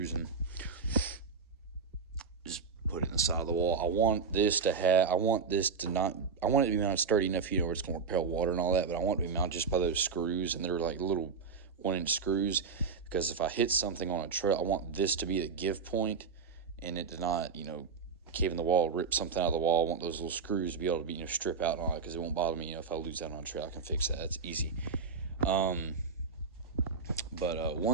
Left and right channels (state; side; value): quieter; left; 5.3 dB